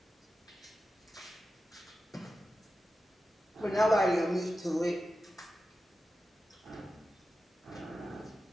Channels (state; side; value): normal; both; correlation 0.92